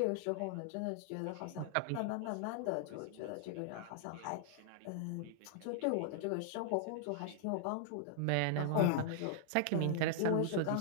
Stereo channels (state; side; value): different; both; correlation 0.00